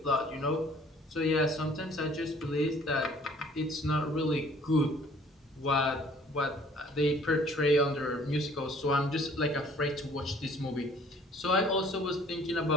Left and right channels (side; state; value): both; normal; correlation 0.56